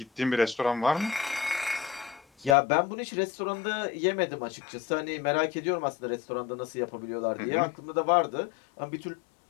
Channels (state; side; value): drops out; right; at 2.6 s